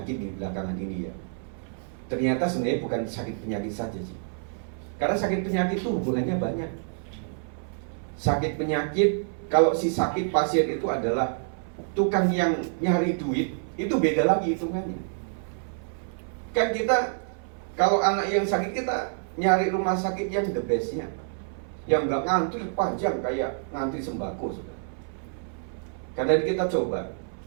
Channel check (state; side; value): silent; left; 60 dB below the other